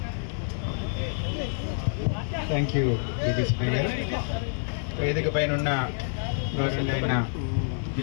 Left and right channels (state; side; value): silent; right; 59 dB below the other